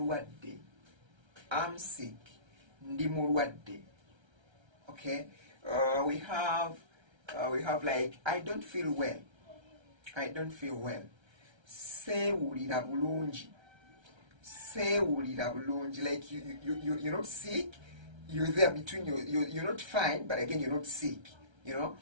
I'm sick. Ndi mulwadde. Okay, we have like I don't feel well. I don't feel well. Sewulira bulungi. Sewulira bulungi. Like you're not sick. You're there between you're not fine, but again you're not sick. You know.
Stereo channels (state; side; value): late; left; 1.3 ms